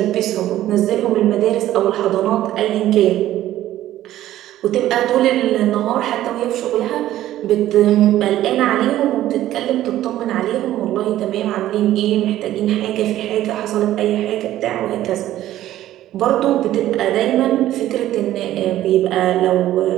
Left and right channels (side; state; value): left; quieter; 13.6 dB